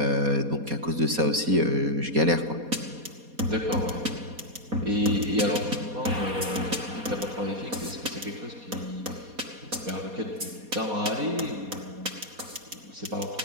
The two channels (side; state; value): left; late; 4.2 ms